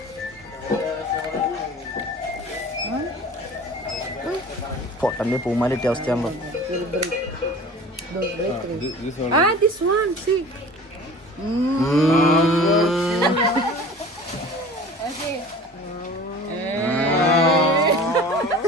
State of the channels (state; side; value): normal; both; correlation 0.41